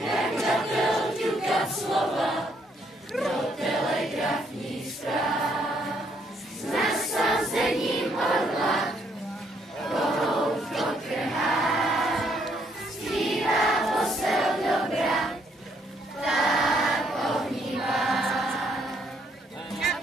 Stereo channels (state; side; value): normal; both; correlation 0.70